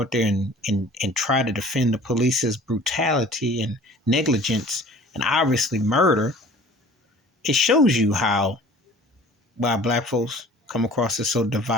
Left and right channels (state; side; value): normal; both; correlation 0.47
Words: there and try to defend the police's brutality and negligence and obviously murder, it shows you how why black folks come across as so